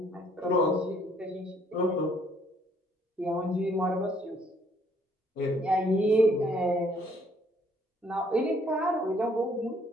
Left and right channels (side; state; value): both; normal; correlation 0.64